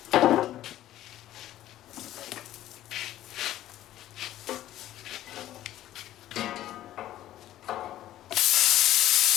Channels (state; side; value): quieter; right; 13.6 dB